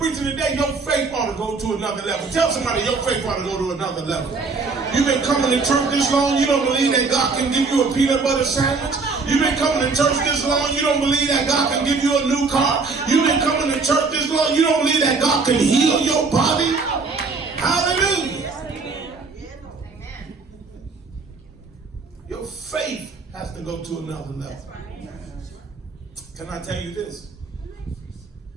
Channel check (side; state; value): left; quieter; 4.2 dB